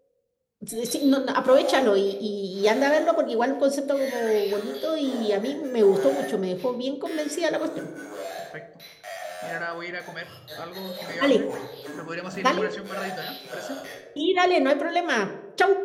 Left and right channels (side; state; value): both; identical; correlation 1.00